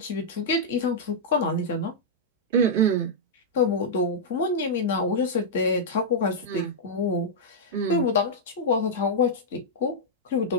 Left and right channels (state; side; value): normal; both; correlation -0.08